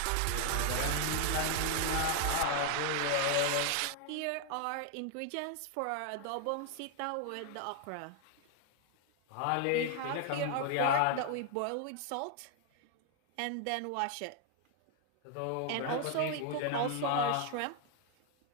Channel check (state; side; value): different; both; correlation 0.00